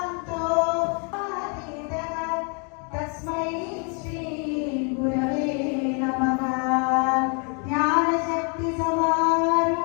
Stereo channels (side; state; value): right; quieter; 37.8 dB